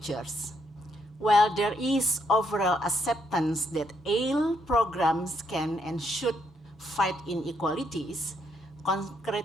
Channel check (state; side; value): normal; both; correlation 0.75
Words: While there is overall acceptance that ALE programs can and should fight inequalities,